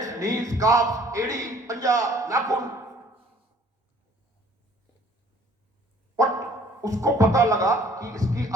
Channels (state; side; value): normal; both; correlation 0.56